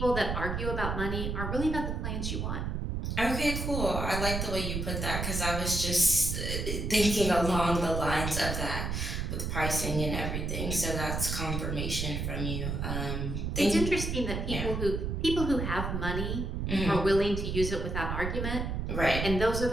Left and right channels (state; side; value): noise; right; rumble, 2 dB below the sound